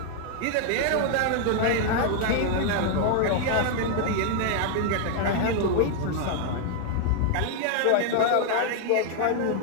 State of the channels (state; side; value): different; both; correlation 0.00